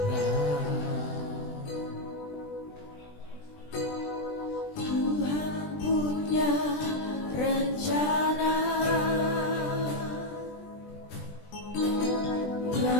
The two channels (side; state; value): right; late; 20 ms